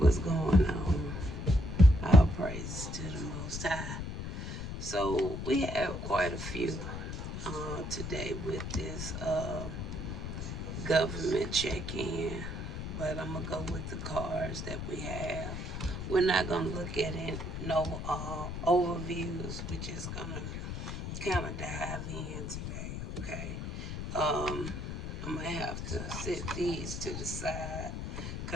going on. All praises to the Most High. So we have quite a few today with this government check-in, but I'm gonna go with the cards that we have. We're not gonna look at it, no overviews. We're just gonna kind of dive in today, okay? I'm gonna have to set these to the side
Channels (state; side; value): noise; left; rumble, 5 dB below the sound